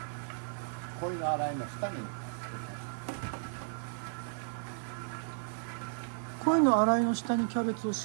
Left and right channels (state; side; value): silent; left; digital silence